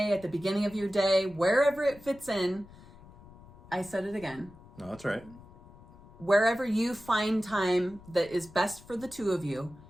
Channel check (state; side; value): noise; left; rumble, 22 dB below the sound